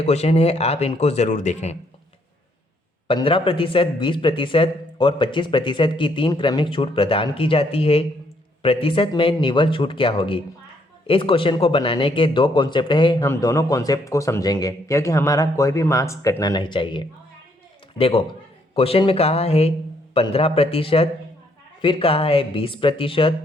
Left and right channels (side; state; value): both; normal; correlation 0.70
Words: क्वेश्चन है, आप इनको ज़रूर देखें। 15%, 20% और 25% की 3 क्रमिक छूट प्रदान की जाती है। प्रतिशत में निवल छूट क्या होगी? इस क्वेश्चन को बनाने के 2 कॉन्सेप्ट है, हम दोनों कॉन्सेप्ट को समझेंगे क्योंकि हमारा कोई भी मार्क्स कटना नहीं चाहिए। देखो, क्वेश्चन में कहा है 15%, फिर कहा है